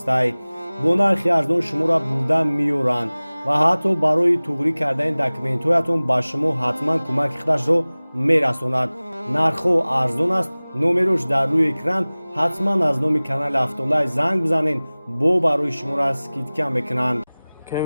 бо нархи арзон шуморо бурда меёранд ва ҳатто барои туғрӣ кардани документҳоятон ба шумо ҳатман кӯмаки худашро мерасонад. нархҳо арзон аст. номерош дар рӯи экран. ҳатман аз номи канали Автолайф занг бизанед, бо барои шуморо скидка мекунанд.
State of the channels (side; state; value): both; inverted; correlation -0.99